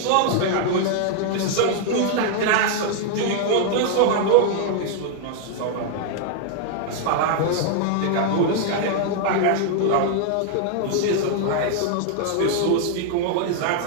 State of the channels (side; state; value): both; different; correlation 0.00